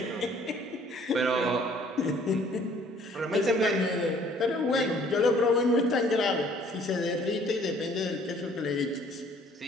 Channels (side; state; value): both; normal; correlation 0.58